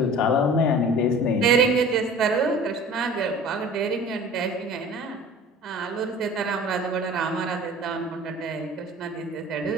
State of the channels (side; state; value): both; normal; correlation 0.43